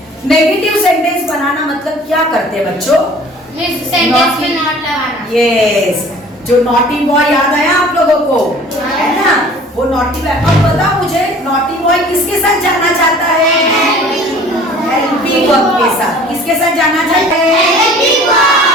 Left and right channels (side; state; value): both; normal; correlation 0.48